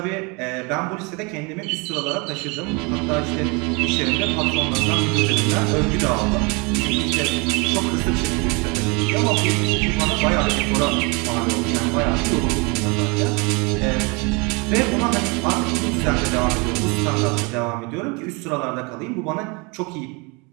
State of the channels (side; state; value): left; quieter; 29.7 dB